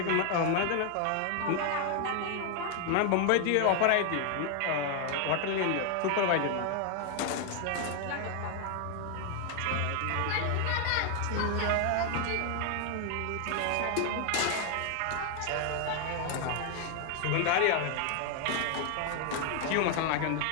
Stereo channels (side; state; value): both; different; correlation 0.00